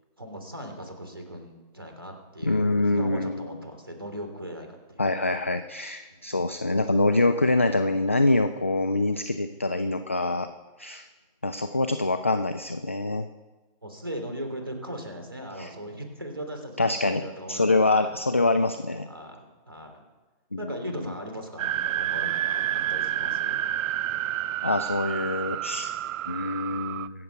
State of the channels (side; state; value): both; inverted; correlation -0.64